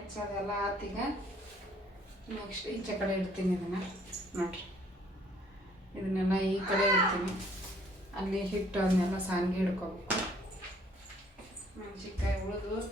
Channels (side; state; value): both; normal; correlation 0.61